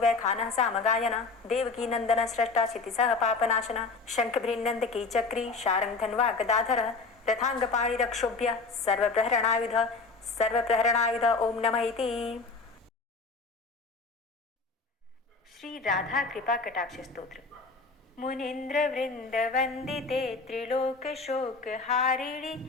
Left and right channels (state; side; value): quieter; right; 4.0 dB